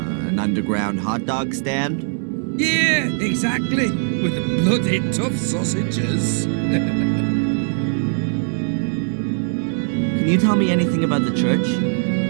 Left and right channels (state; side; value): silent; left; digital silence